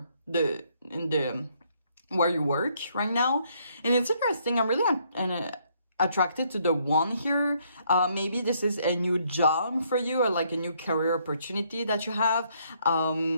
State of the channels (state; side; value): inverted; both; correlation -0.69